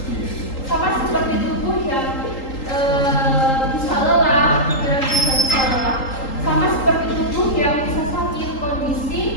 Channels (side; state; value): right; late; 3.8 ms